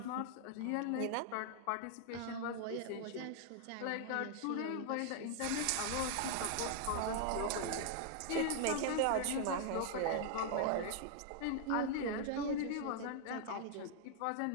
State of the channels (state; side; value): different; both; correlation 0.00